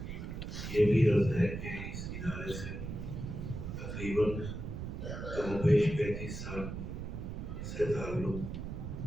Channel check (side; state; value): right; noise; rumble, 6 dB below the sound